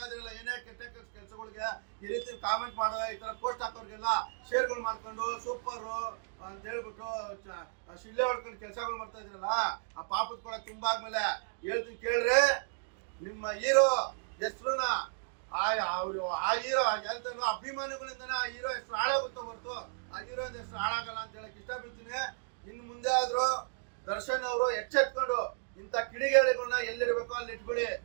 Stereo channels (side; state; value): left; silent; digital silence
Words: ಇದ್ರಲ್ಲ, ಏನೇ ಕೆಟ್ಟ ಕೆಲಸಗಳಿಗೆ ಈ ರೀತಿ ಕಾಮೆಂಟ್ ಮಾಡೋ, ಈ ತರ ಪೋಸ್ಟ್ ಹಾಕೋರ್ಗೆಲ್ಲ ಶೇರ್ಗಳು ಮಾಡ್ಕೊಂಡು ಸೂಪರ್ ಅಂತ ಹೇಳ್ಬಿಟ್ಟು ಶಿಲ್ಲೆ ಹೊಡ್ಕೊಂಡು ಕೆಲಸಗಳು ಮಾಡ್ತಾ ಇದ್ರಲ್ಲ, ಆ ಪಾಪದ ಕೊಡ ತುಂಬಾದ್ಮೇಲೆ ಹೇಳ್ತೀನಿ ಕೇಳ್ರಿ, ನಿಮ್ಮ ಹೀರೋ ಹೆಸರುನ ಆ ಹೀರೋ ಹೇಳ್ತಾನೋ ಅಭಿಮಾನಿಗಳಿಂದನೇ ಆ ಹೀರೋ ಹೆಸರು ಹಾಳಾಗುತ್ತೋ ಹೊರತು ಆ ಹೀರೋ ಹೆಸರು ಹಾಳಾಗಲ್ಲ ಅಂತ ಹೇಳಕ್ ಇಷ್ಟಪಡ್ತೀನಿ. ಇನ್ನು ಮುಂದೆ ಆದ್ರೂ ದರ್ಶನ್ ಅವರು ಎಚ್ಚೆತ್ಕೊಂಡು ಇಂಥ ಕಿಡಿಗೇಡಿಗಳನ್ನ ಎಲ್ಲಿರ್ಬೇಕೋ ಅಲ್ಲಿ ಇಟ್ಬಿಡಿ.